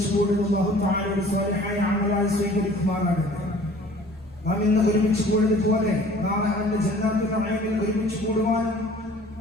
കൂടുന്ന അല്ലാഹു തആലയുടെ സ്വാലിഹായ അമലായി സ്വീകരിക്കുമാറാകട്ടെ. നാം ഇന്ന് ഒരുമിച്ച് കൂടിയതുപോലെ നാളെ അവന്റെ ജന്നാത്തുൽ നഈമിൽ ഒരുമിച്ച് കൂടുവാനും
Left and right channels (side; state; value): both; normal; correlation 0.50